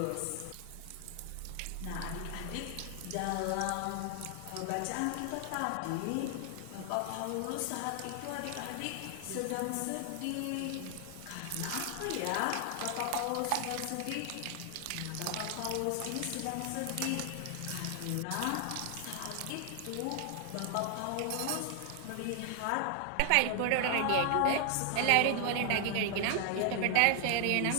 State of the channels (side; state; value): both; different; correlation 0.00